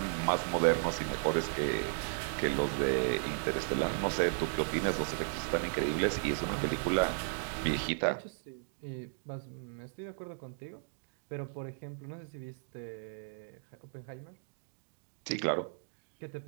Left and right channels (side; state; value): left; silent; digital silence